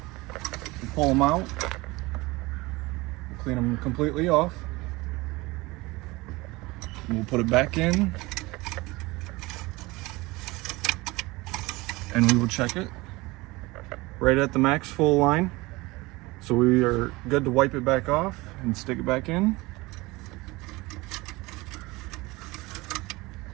We'll pull them out. We'll clean them completely off. And we'll put it back in. And we will check it right at the max full line. So we are good to wipe it back off and stick it back in.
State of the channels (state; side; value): quieter; left; 22.0 dB